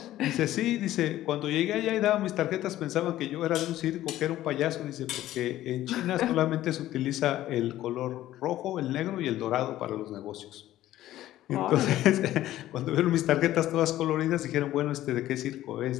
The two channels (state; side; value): quieter; right; 14.1 dB